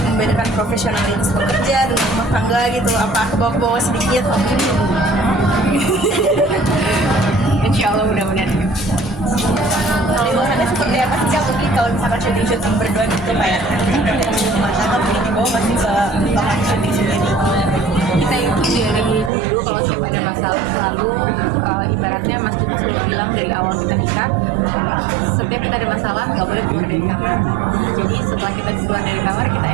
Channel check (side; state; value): left; drops out; at 19.3 s